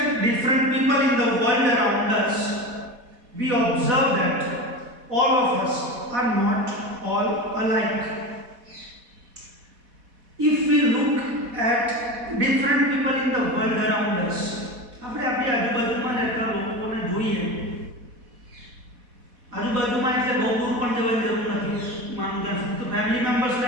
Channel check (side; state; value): left; late; 4.1 ms